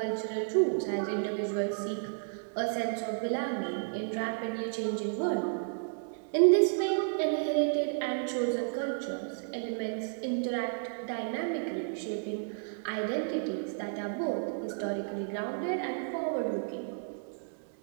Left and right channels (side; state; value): left; silent; digital silence